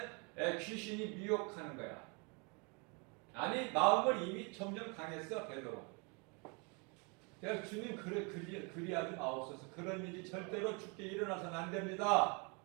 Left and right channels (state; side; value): quieter; left; 32.5 dB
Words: 귀신이 미혹하는 거야. 아니 마음을 이미 점점 강했어 베드로. 그래서 주님 그리하지 마옵소서. 그런 일이 절대로 죽게 일어나서는 안 됩니다.